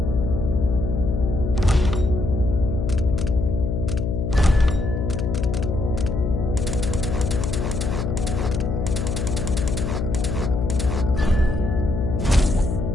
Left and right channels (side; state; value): left; noise; hum, 1 dB below the sound